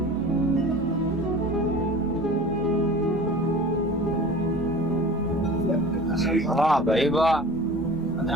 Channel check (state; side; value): normal; both; correlation 0.39